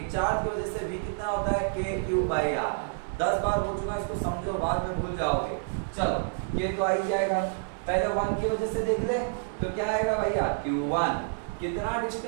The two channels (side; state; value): left; silent; 59 dB below the other